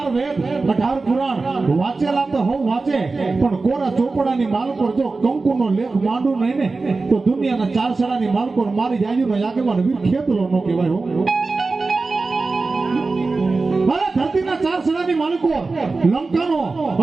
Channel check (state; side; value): quieter; left; 3.8 dB